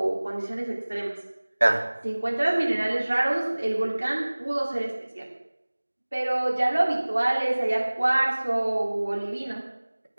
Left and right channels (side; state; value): both; inverted; correlation -1.00